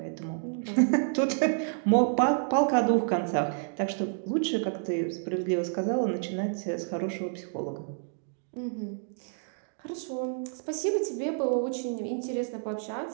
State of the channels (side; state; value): left; silent; digital silence